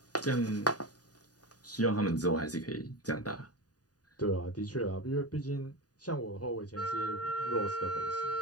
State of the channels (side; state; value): right; late; 0.68 ms